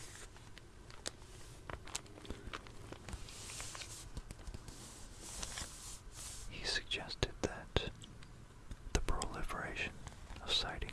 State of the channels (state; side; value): identical; both; correlation 1.00